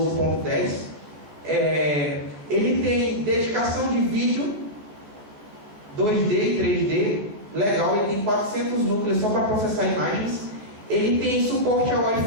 12.10. Ele tem dedicação de vídeo 2D e 3D, legal, ele tem 400 núcleos só para processar imagens. Ele tem suporte a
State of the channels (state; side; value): late; left; 14 ms